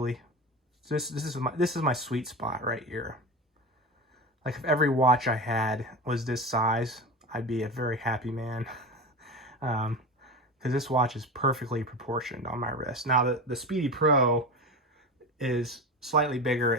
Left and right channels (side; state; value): both; normal; correlation 0.26